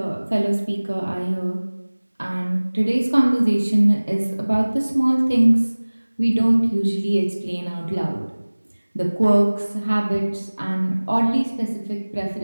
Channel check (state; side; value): inverted; both; correlation -1.00